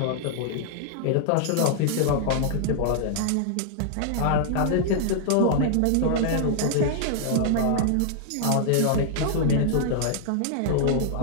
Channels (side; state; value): both; different; correlation -0.01